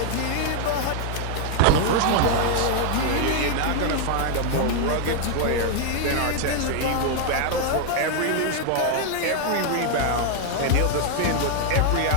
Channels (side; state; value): both; different; correlation 0.00